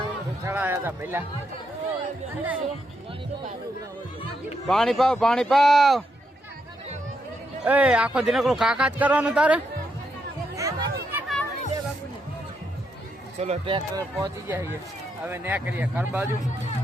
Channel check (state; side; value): normal; both; correlation 0.80